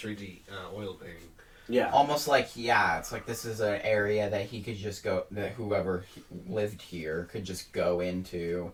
oil painting. Yeah. Almost like, yeah, it's like this is an area that he could just go, that whoever lived here could just go into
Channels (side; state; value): both; identical; correlation 1.00